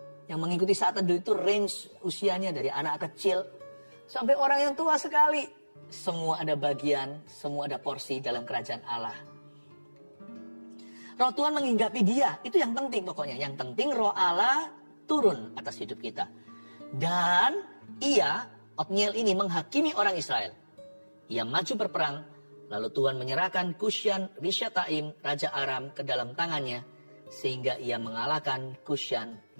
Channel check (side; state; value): both; inverted; correlation -1.00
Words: Yang mengikuti saat teduh itu range usianya dari anak kecil sampai orang yang tua sekali. Semua ada bagian, semua ada porsi dalam kerajaan Allah. Roh Tuhan menghinggapi dia, itu yang penting pokoknya. Yang penting roh Allah turun atas hidup kita. Dan Otniel ini menghakimi orang Israel. Ia maju berperang, lalu Tuhan menyerahkan Kusyan Rishyataim, Raja Aram, ke dalam tangannya, sehingga ia mengalahkan Kusyan